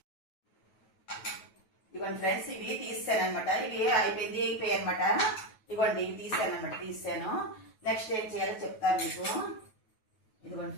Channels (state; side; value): late; right; 9.3 ms